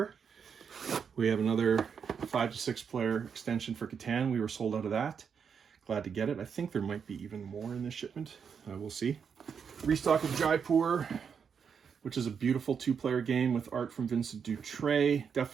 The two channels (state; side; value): quieter; left; 6.7 dB